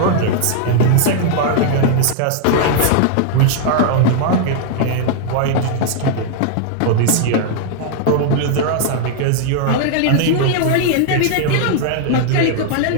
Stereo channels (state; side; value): different; both; correlation -0.01